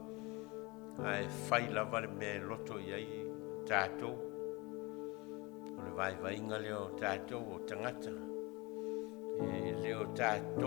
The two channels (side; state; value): right; quieter; 25.3 dB